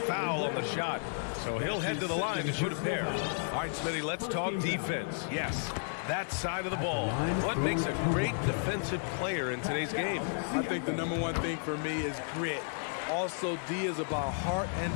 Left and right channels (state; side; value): silent; right; digital silence